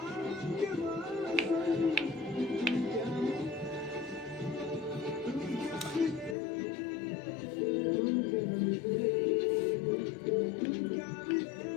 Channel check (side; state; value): right; drops out; at 6.4 s